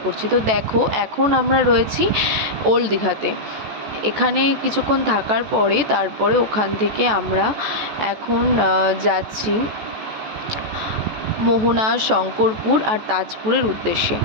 করছি। তো দেখো, এখন আমরা রয়েছি ওল্ড দীঘাতে। এখানে কিছুক্ষণ থাকার পরে তারপরে ওখান থেকে আমরা এখন যাচ্ছি মোহনা, শঙ্করপুর আর তাজপুরের উদ্দেশ্যে।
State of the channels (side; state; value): left; late; 14 ms